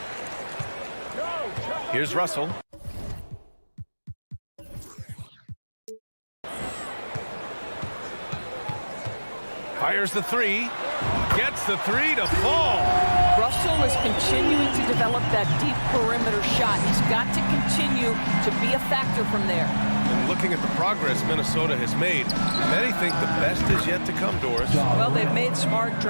Here's Russell. Fires the three. Gets the three to fall. Russell is continuing to develop that deep perimeter shot. He's got to continue to be a factor from there. And looking at the progress Minnesota has made, many think the best is yet to come, Doris. Well, they've made smart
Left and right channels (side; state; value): both; inverted; correlation -1.00